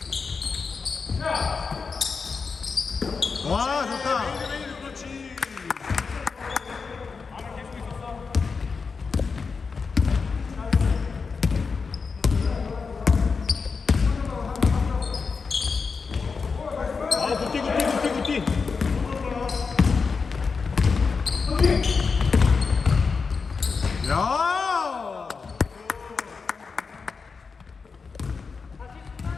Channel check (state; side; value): quieter; right; 5.0 dB